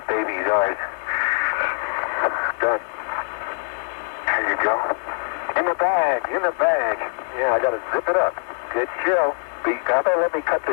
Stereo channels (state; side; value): silent; right; digital silence